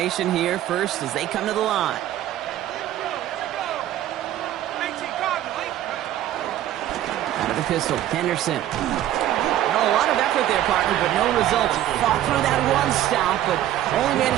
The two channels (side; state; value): left; quieter; 12.7 dB